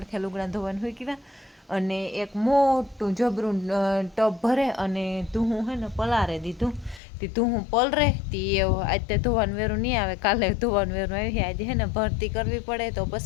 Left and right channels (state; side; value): drops out; right; at 7.0 s